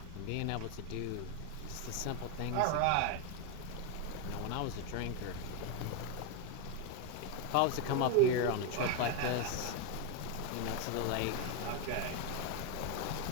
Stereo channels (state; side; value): different; both; correlation 0.02